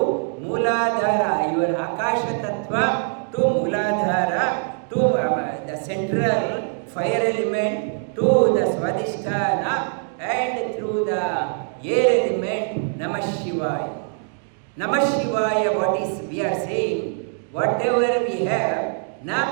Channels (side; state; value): left; silent; 57 dB below the other